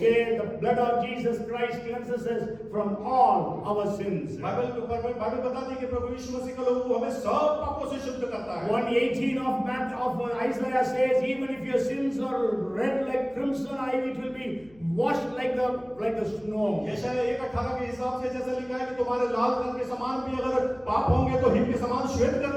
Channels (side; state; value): left; noise; hum, 27 dB below the sound